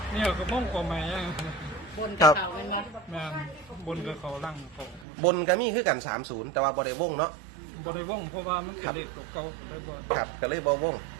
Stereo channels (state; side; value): drops out; left; at 5.1 s